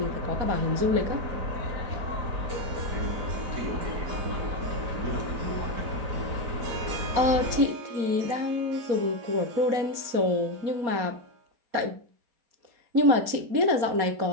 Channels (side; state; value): left; late; 4.2 ms